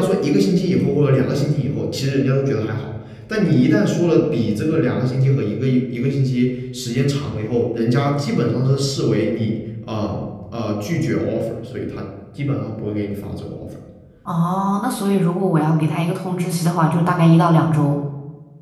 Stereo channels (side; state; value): both; identical; correlation 1.00